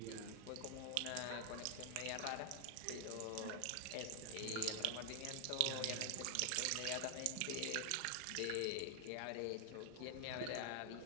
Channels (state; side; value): different; both; correlation 0.00